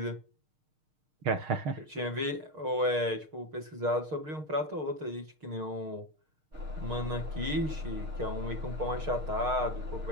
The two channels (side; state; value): left; late; 6.5 ms